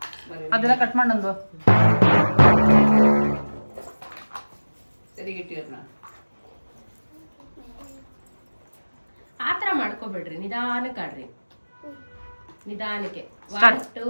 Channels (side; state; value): both; inverted; correlation -1.00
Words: ಅದೆಲ್ಲ ಕಟ್ ಮಾಡಂದು ಸರಿಗಿಟ್ಟಿರ್ನ ಆತರ ಮಾಡ್ಕೋಬೇಡ್ರಿ, ನಿಧಾನಕ್ಕೆ ಆಡ್ರಿ, ನಿಧಾನಕ್ಕೆ. 1